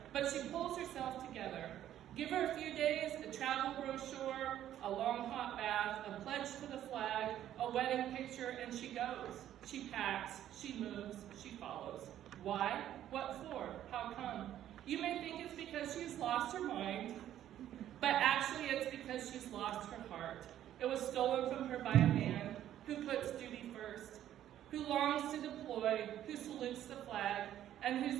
but she pulls herself together. Give her a few days, a travel brochure, a long hot bath, a pledge to the flag, a wedding picture, and she goes. She packs, she moves, she follows. Why? What for? How come? You may think it's because she's lost her mind, but actually it's because she's lost her heart. It was stolen from her by a man who puts duty first, who longs to deploy, who salutes the flag, and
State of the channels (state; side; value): quieter; left; 11.7 dB